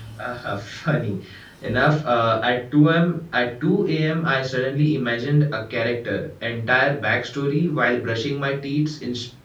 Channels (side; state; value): both; identical; correlation 1.00